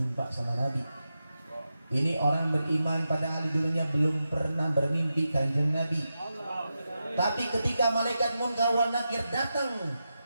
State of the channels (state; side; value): inverted; both; correlation -0.89